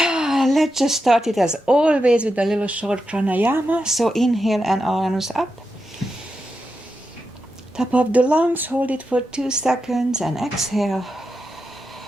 just start it as always with a little short pranayama. So inhale and arms up. Top of the lungs, hold it for 2 seconds and exhale.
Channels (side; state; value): both; normal; correlation 0.88